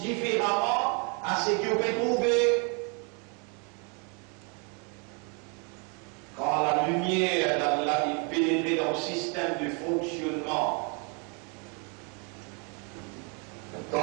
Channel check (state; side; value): quieter; left; 35.8 dB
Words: différemment à ce qu'on peut trouver. Quand la lumière d'Allah est pénétrée dans le système de fonctionnement,